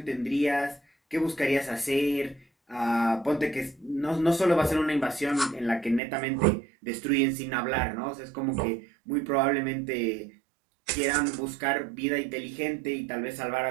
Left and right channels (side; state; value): left; drops out; at 6.0 s